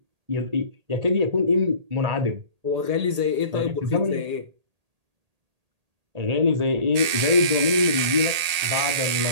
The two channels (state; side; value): late; left; 1.8 ms